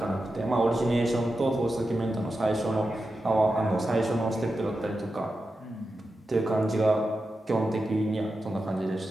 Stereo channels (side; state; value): both; normal; correlation 0.90